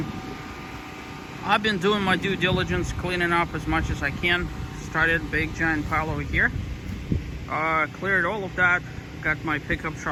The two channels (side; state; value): both; identical; correlation 1.00